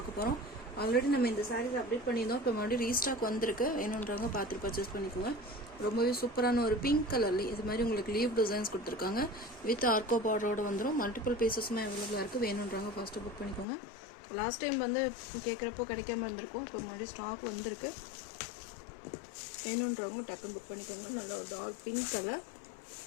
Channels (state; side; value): drops out; right; at 13.7 s